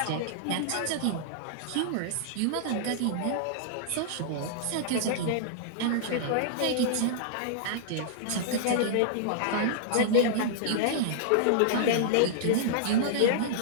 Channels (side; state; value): both; different; correlation -0.01